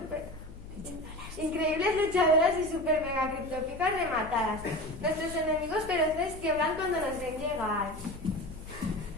Increíbles luchadoras y super mega criptópicas rematadas. Nuestros enemigos feroces tiemblan cuando nos ven llegar.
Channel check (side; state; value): left; noise; hum, 16 dB below the sound